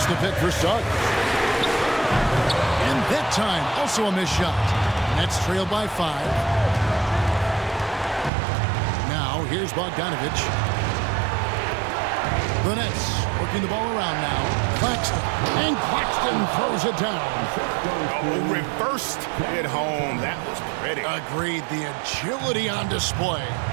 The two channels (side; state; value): left; drops out; at 8.3 s